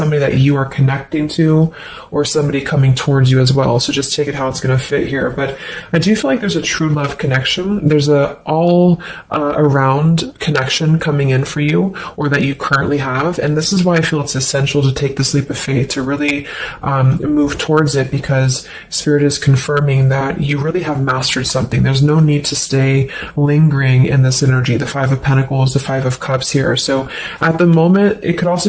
that you are connecting to or somebody coming towards you as well. So just take it how it's going to fit here. But I do feel like there's a true love connection. There's a all around connection coming in for you, or that you currently have. And this is why I feel it's essential to take this leap of faith, to really move towards it, because Spirit is confirming that you really have mastered something. There's no need to stay lingering in this energy, the Five of Pentacles, the Five of Cups here. So at the moment, it could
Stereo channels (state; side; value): identical; both; correlation 1.00